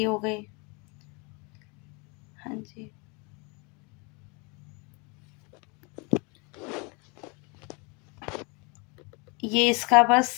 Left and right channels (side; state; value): right; quieter; 30.5 dB